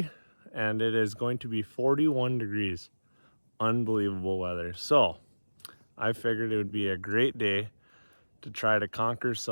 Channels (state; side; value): inverted; both; correlation -1.00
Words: and it is going to be 41 degrees. Unbelievable weather. So I figured it would be a great day to try to conquer